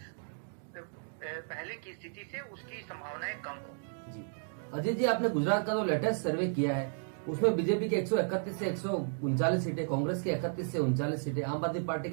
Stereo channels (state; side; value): silent; left; digital silence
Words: पहले की स्थिति से उसकी संभावनाएं कम हो। जी अजय जी, आपने गुजरात का जो लेटेस्ट सर्वे किया है उसमें बीजेपी के 131 से 139 सीटें, कांग्रेस की 31 से 39 सीटें, आम आदमी पार्टी